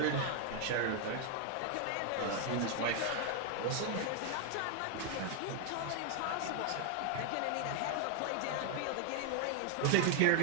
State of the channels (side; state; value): both; different; correlation 0.00